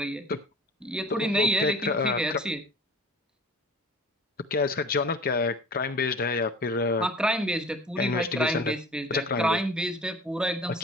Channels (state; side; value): normal; both; correlation 0.42